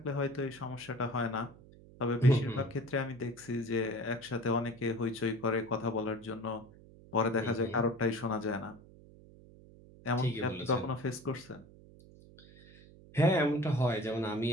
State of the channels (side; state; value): right; noise; hum, 22 dB below the sound